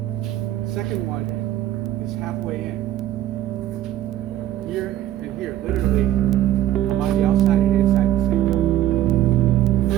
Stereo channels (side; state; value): left; quieter; 12.8 dB